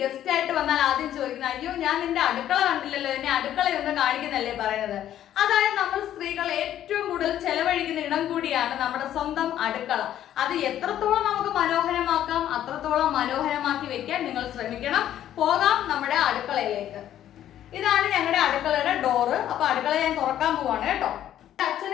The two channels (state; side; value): quieter; right; 11.5 dB